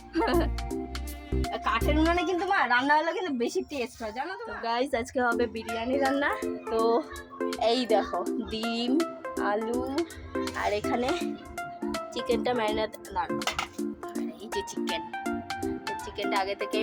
কাঠের উনুনে কিন্তু মা রান্না হলে কিন্তু বেশি টেস্ট হয়, জানো তো গাইস। আজকে হবে বিরিয়ানি রান্না। তো এই দেখো ডিম, আলু, আর এখানে চিকেনটা ম্যারিনেট, আর এই যে চিকেন চিকেনটা আগে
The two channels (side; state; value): both; identical; correlation 1.00